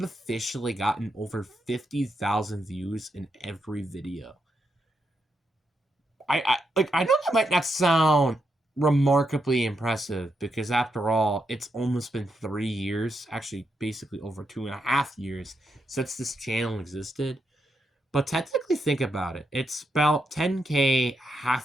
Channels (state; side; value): normal; both; correlation 0.82